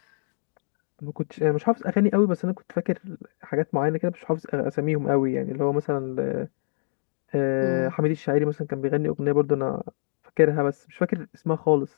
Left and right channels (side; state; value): right; silent; digital silence